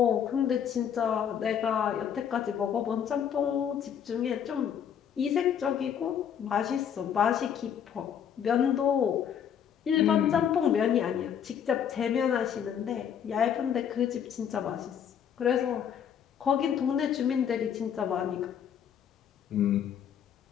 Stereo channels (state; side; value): quieter; right; 8.6 dB